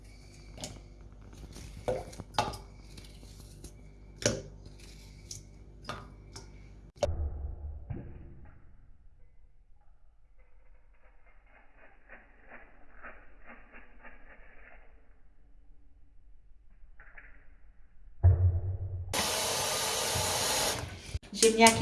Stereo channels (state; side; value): identical; both; correlation 1.00